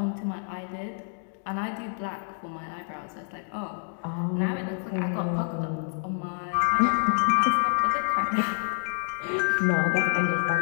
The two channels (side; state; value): right; silent; 60 dB below the other